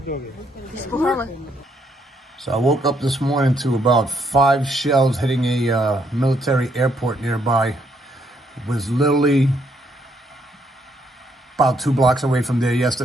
So I woke up this morning to about 5 shells hitting a military airport nearby. It was literally about 2 blocks away from there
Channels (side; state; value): both; normal; correlation 0.72